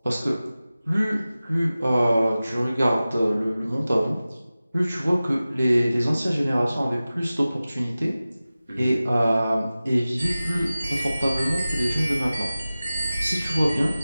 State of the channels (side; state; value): both; inverted; correlation -0.96